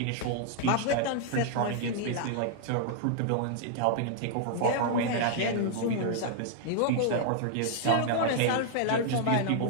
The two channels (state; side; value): different; both; correlation -0.01